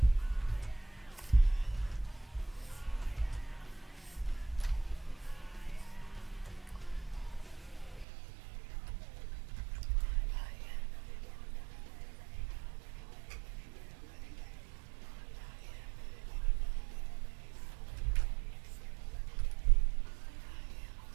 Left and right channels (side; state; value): left; drops out; at 8.1 s